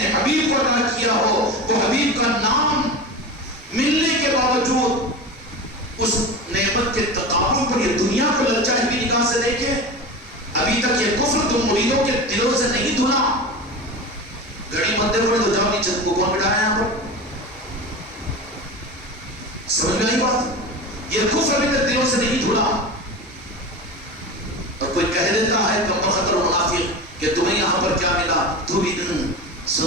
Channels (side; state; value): both; normal; correlation 0.27